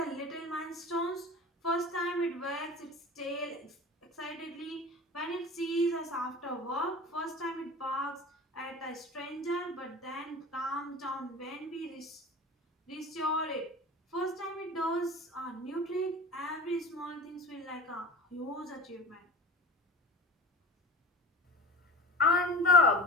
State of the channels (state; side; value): normal; both; correlation 0.33